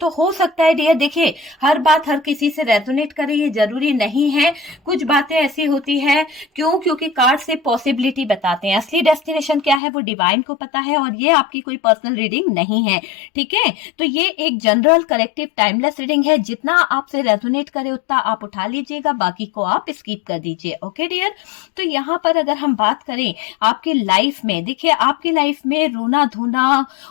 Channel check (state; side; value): drops out; right; at 9.8 s